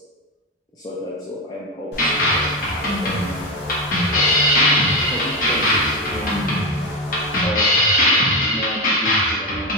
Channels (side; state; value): both; normal; correlation 0.13